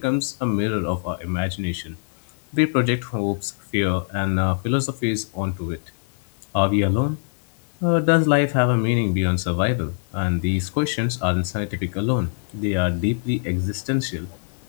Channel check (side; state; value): right; silent; digital silence